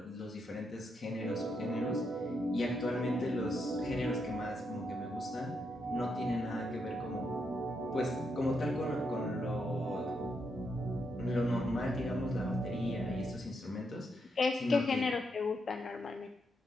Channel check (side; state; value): both; normal; correlation 0.80